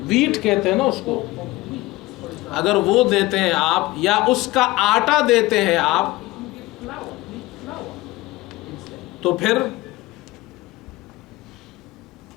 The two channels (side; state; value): right; quieter; 19.7 dB